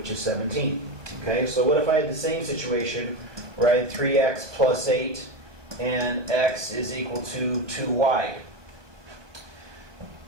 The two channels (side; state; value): left; late; 1.2 ms